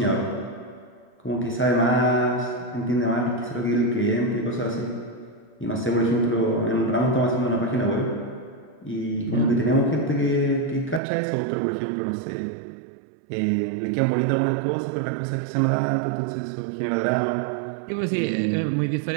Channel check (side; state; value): left; drops out; at 11.0 s